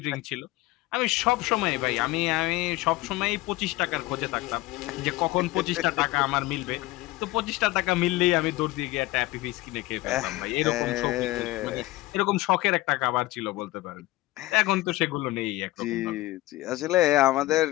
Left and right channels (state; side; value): quieter; right; 18.9 dB